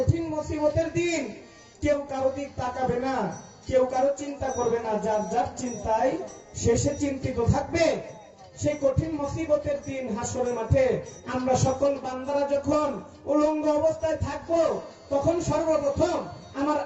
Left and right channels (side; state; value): both; identical; correlation 1.00